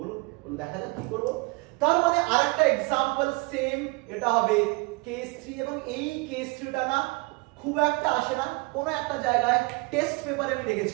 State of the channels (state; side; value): quieter; left; 26.4 dB